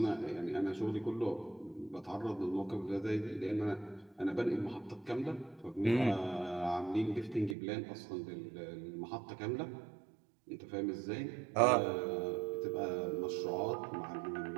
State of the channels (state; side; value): drops out; left; at 7.6 s